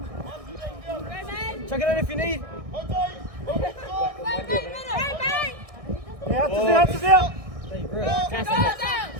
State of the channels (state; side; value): late; left; 1.6 ms